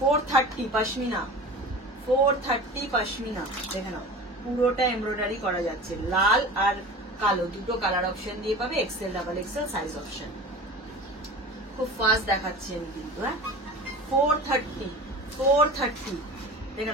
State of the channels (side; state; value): both; normal; correlation 0.36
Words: পশমিনা, 430 পশমিনা, দেখে নাও পুরোটা এমব্রয়ডারি করা যাচ্ছে, লাল আর কালো দুটো কালার অপশন দিয়ে পাবে, Excel double XL size option. খুব ফাস্ট দেখাচ্ছি আমি কিন্তু, হ্যাঁ 430 দেখে